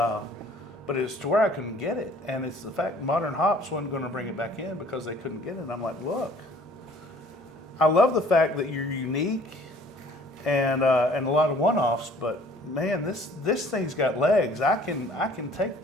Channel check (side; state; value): both; normal; correlation 0.54